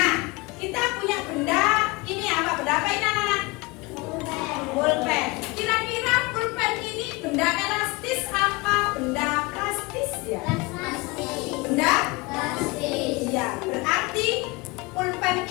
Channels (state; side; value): quieter; right; 24.8 dB